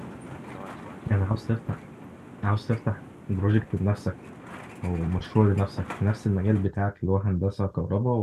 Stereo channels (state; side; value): identical; both; correlation 1.00